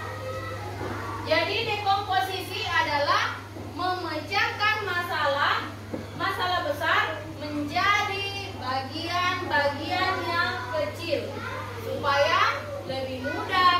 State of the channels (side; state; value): both; identical; correlation 1.00